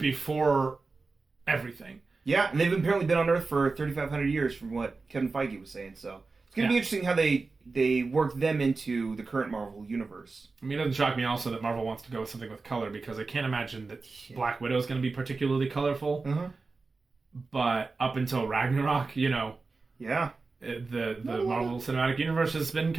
everything. Yeah, and they've apparently been on Earth for 3,500 years from what Kevin Feige was saying, so it's going to be interesting how they work them into the current Marvel universe. I mean, it doesn't shock me also that Marvel wants to go with something with color, because I can't imagine that Black Widow is going to be particularly colorful. Uh-huh. But up until Ragnarok, the Marvel Cinematic Universe has been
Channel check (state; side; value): quieter; left; 4.0 dB